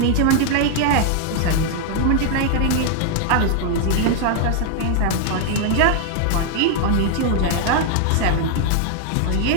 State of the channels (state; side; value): different; both; correlation -0.01